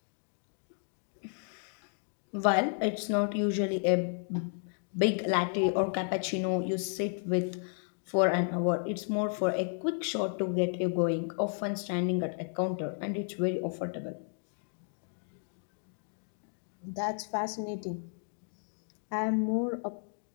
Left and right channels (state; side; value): silent; right; 56 dB below the other